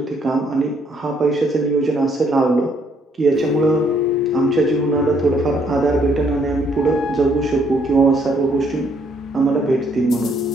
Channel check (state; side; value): normal; both; correlation 0.68